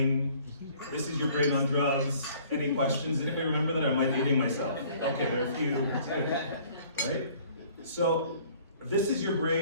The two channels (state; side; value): inverted; both; correlation -0.55